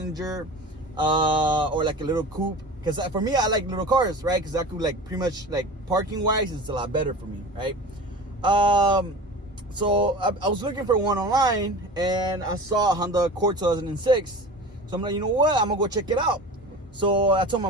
or like a little coupe. Because for me, I like little cars, right? Because I could like pretty much like parking wise, it's a lot better for me, right? So I was looking for one online and I saw a Honda Accord 2006. So I'm like, you know what? I'm gonna go check it out. So I told my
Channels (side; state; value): both; normal; correlation 0.35